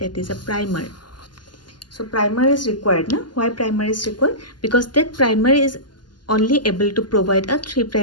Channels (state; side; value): late; right; 0.71 ms